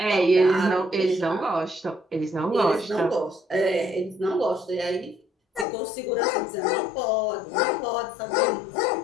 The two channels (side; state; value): right; drops out; at 5.7 s